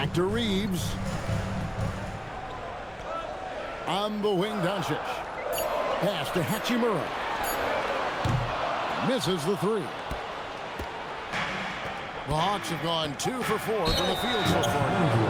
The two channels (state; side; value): identical; both; correlation 1.00